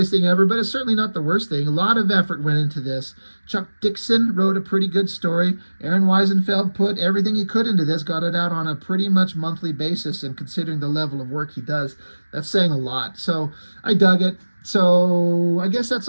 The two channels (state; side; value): inverted; both; correlation -1.00